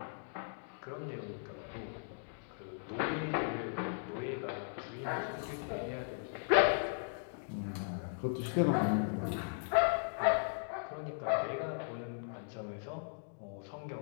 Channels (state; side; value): silent; right; digital silence